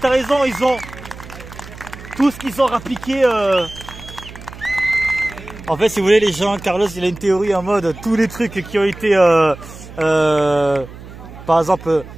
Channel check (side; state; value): right; noise; hum, 16 dB below the sound